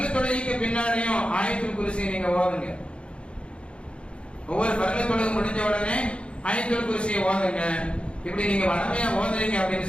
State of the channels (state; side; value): late; right; 0.058 ms